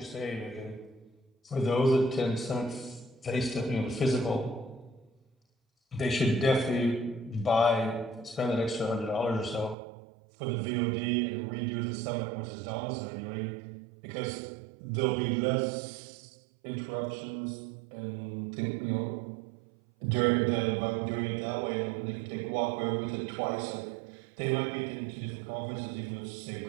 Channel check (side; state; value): left; drops out; at 9.8 s